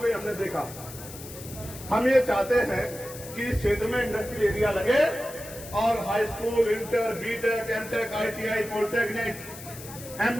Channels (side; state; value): left; noise; hiss, 14 dB below the sound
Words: गए, हमने देखा। हम ये चाहते हैं कि इस क्षेत्र में इंडस्ट्रियल एरिया लगे, और high school, inter, BTech, MTech, ITI, polytechnic,